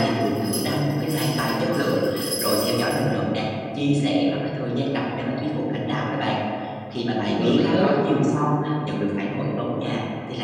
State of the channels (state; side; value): identical; both; correlation 1.00